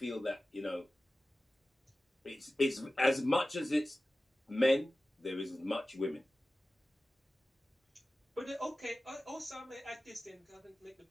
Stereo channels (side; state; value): both; normal; correlation 0.95